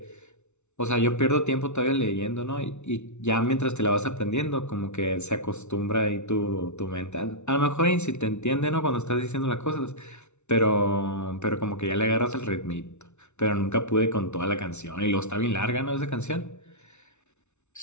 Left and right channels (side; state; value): right; late; 0.82 ms